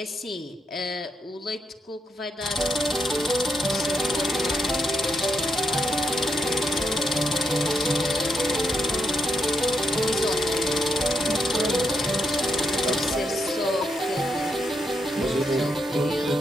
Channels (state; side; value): normal; both; correlation 0.81